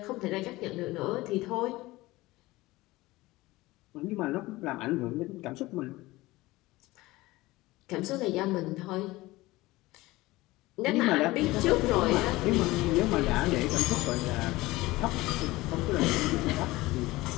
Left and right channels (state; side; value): quieter; right; 19.5 dB